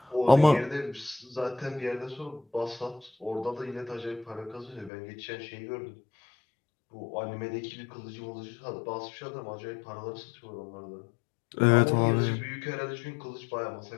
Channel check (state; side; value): drops out; right; at 4.9 s